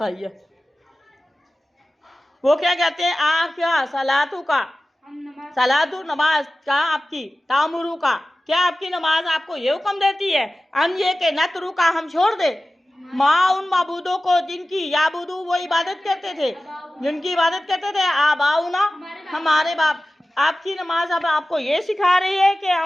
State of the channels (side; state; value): both; normal; correlation 0.96